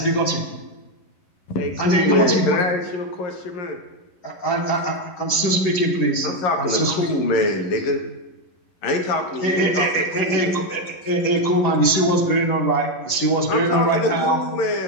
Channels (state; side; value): late; right; 11 ms